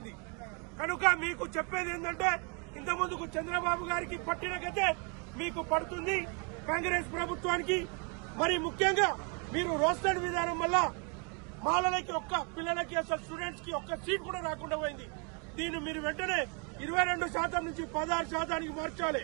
కనుక మీకు చెప్పేది ఏంటంటే ఇంతకుముందుకు చంద్రబాబు గారికి పట్టిన గతే మీకు పడుతుంది కాంగ్రెస్ ప్రభుత్వానికి। మరి ముఖ్యంగా మీరు రోస్టర్ విధానం వల్ల మాలలకి పిల్లలకి అసలు స్టూడెంట్స్ కి ఒక్క సీట్ కూడా రాకుండా పోయింది। దీన్ని మీరు వెంటనే 22% నుంచి 16% మార్చాలి।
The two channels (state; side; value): quieter; left; 34.3 dB